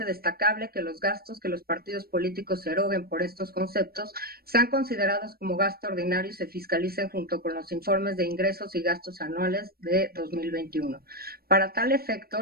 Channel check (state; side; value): late; left; 0.44 ms